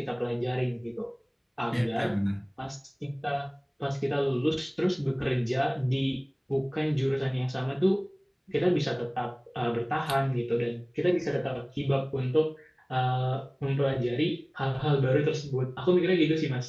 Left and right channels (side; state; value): both; identical; correlation 1.00